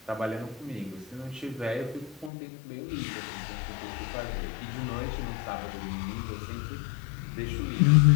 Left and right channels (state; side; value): drops out; right; at 2.3 s